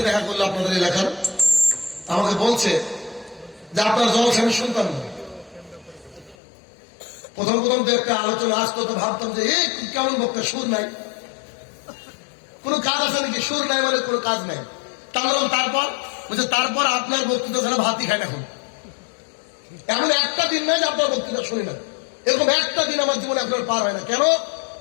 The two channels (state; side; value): drops out; right; at 6.4 s